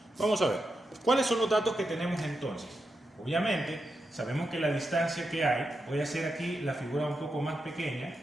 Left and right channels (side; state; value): both; normal; correlation 0.87